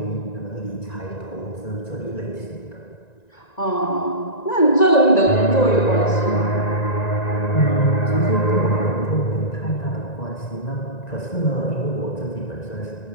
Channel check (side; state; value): right; late; 1.9 ms